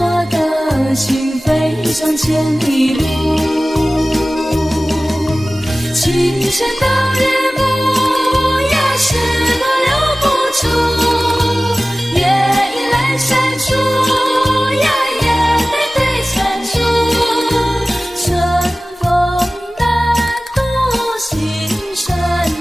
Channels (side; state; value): both; normal; correlation 0.97